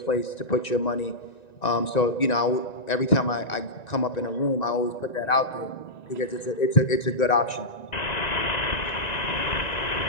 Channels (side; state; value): right; late; 1.9 ms